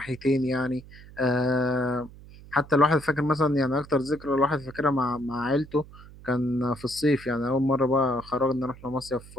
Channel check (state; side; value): noise; right; hum, 19 dB below the sound